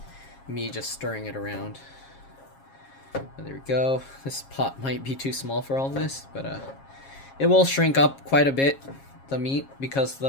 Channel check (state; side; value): late; right; 7.4 ms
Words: me just stirring it around. There we go. This pot might be too small for all this, but it will shrink up quite a bit, the meat, because